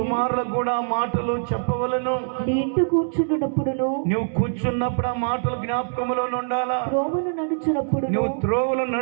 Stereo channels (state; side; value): silent; left; 63 dB below the other